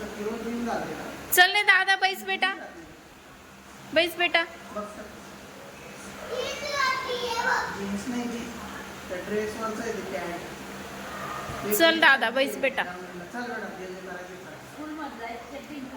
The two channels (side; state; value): both; identical; correlation 1.00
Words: चल ने दादा बैस बेटा, बैस बेटा. चल दादा बैस बेटा.